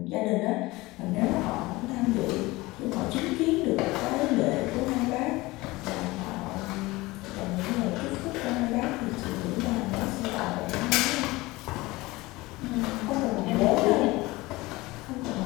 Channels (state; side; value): quieter; right; 20.9 dB